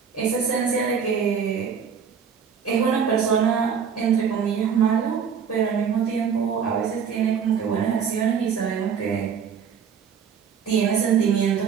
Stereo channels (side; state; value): left; quieter; 7.1 dB